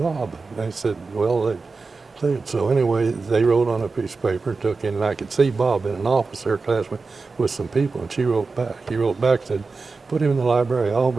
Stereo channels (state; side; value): quieter; left; 4.2 dB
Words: And they said, well, so anyway, they wrote on a piece of paper, took in, and I could see Bob in an office there, classmate, with some people, and she wrote back. He wrote back, said, put him in the library, I'll